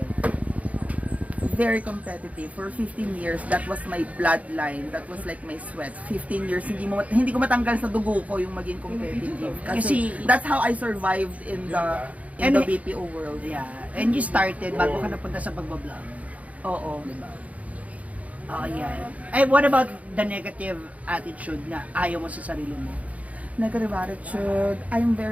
Very competitive. For 15 years, that was my bloodline. That was like my sweat. 15 years, hindi ko matanggal sa dugo ko yung maging competitive. Kasi that's how I survived in the BPO world. Yeah. And you started bago ka napunta sa pagbablog. Oo. Diba? Oh, yeah. And what about the negative attitude na ayaw mo sa sarili mo? Negative attitude. I'm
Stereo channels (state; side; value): late; left; 0.069 ms